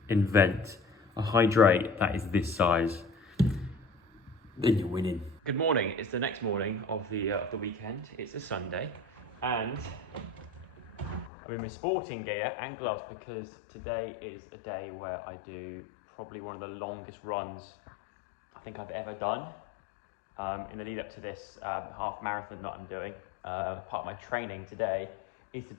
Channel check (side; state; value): right; drops out; at 11.3 s